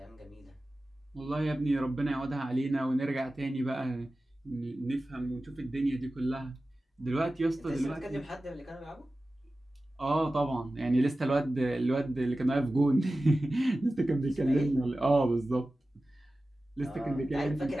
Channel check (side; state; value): both; normal; correlation 0.95